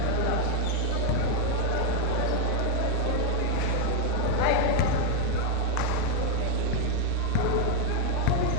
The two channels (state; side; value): different; both; correlation 0.01